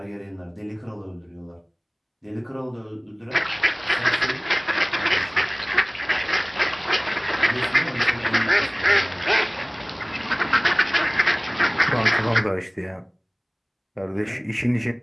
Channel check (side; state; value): both; identical; correlation 1.00